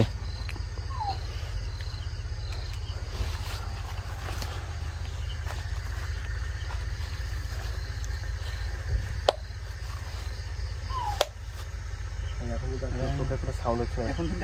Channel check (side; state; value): both; identical; correlation 1.00